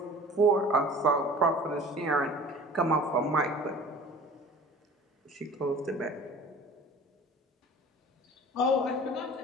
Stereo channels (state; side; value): normal; both; correlation 0.44